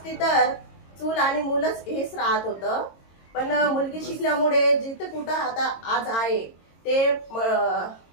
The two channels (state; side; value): late; right; 22 ms